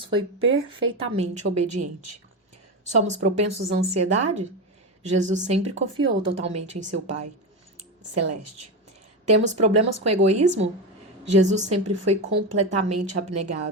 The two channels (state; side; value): normal; both; correlation 0.16